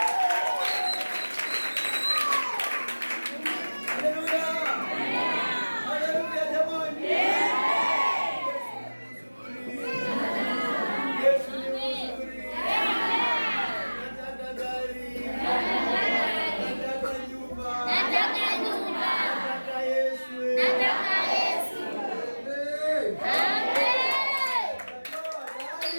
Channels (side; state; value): both; inverted; correlation -1.00